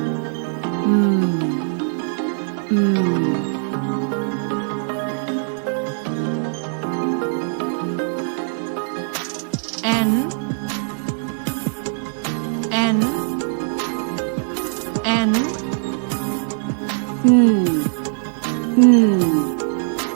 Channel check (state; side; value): silent; left; digital silence